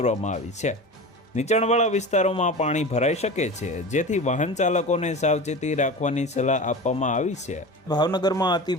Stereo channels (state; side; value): normal; both; correlation 0.31